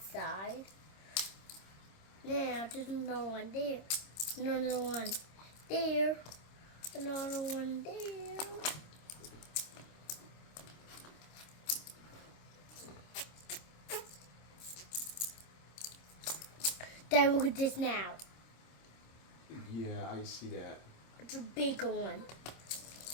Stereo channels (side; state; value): right; late; 26 ms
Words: side. Now there's another one there, another one there, another one there. Dad, look at this now. Yeah, I see that. It's a bigger one.